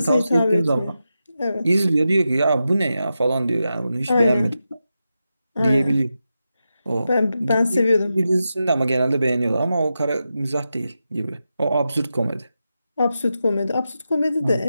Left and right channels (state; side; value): inverted; both; correlation -0.90